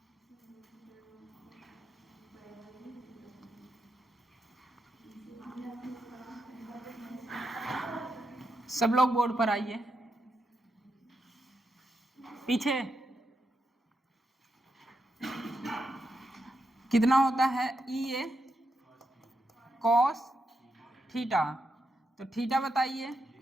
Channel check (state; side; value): normal; both; correlation 0.84